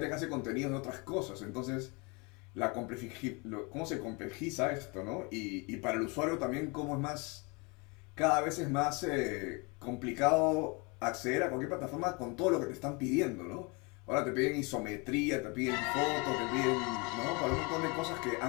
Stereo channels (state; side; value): quieter; right; 29.5 dB